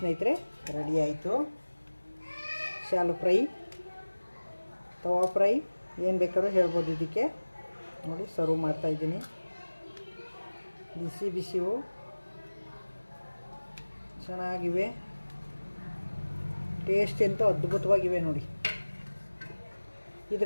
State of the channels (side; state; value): both; inverted; correlation -1.00